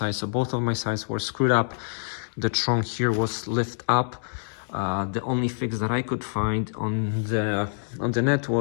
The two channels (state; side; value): silent; right; digital silence